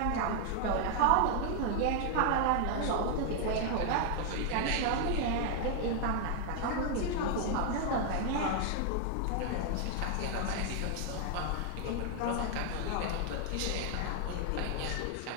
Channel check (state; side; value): different; both; correlation 0.00